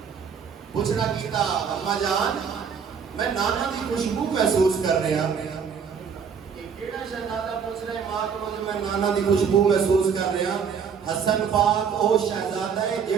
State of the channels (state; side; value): quieter; left; 6.6 dB